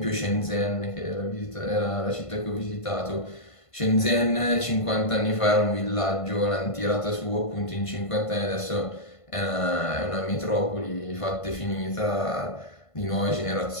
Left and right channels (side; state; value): right; late; 1.5 ms